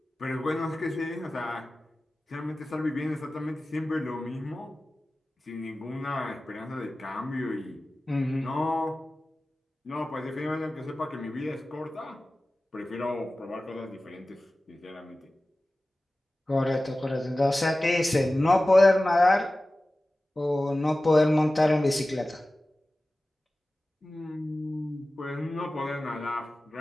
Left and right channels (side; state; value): both; normal; correlation 0.96